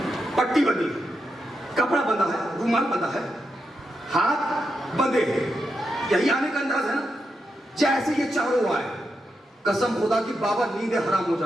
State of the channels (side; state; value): both; normal; correlation 0.85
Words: پٹی بندی, کپڑا بندھا ہے, رومال بندھا ہے, ہاتھ بندھے ہیں. یہی آنے کا انداز ہے نا. جیسے یہ چاروں آئے, قسم خدا کی بابا نیندیں حرام ہو